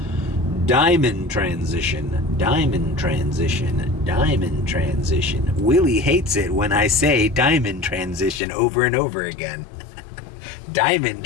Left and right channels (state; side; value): drops out; right; at 8.4 s